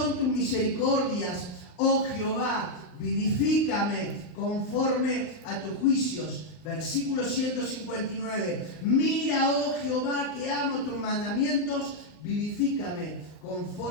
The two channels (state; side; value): late; right; 39 ms